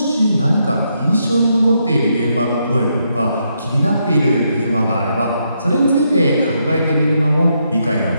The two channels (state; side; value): inverted; both; correlation -0.79